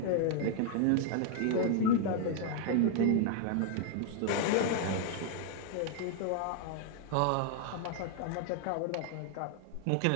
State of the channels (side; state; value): both; different; correlation 0.00